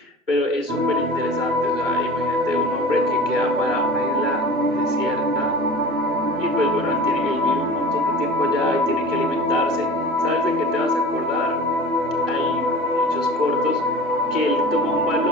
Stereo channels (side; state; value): both; normal; correlation 0.38